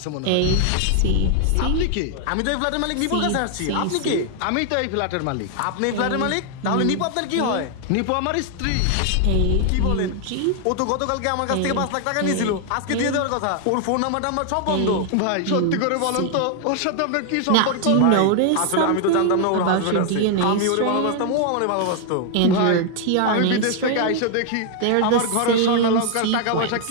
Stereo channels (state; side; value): different; both; correlation 0.00